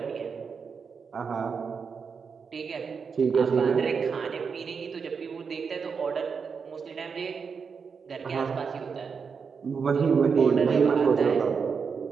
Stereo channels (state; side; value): quieter; left; 5.8 dB